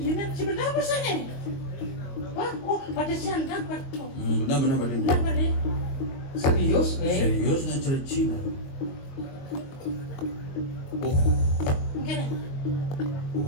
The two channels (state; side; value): late; right; 22 ms